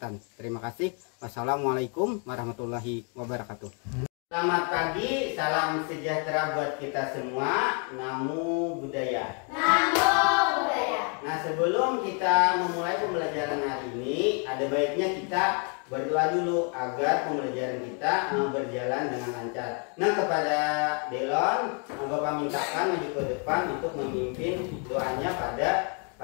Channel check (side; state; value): right; quieter; 38.8 dB